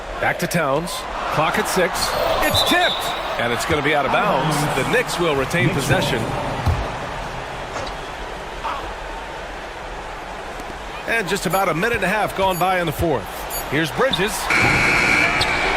Back to Towns. Clock at 6. It's tipped. And it's going to be out of bounds. The Knicks will retain possession. And just about a minute and a half gone by in the fourth. Here's Bridges.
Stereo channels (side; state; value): both; identical; correlation 1.00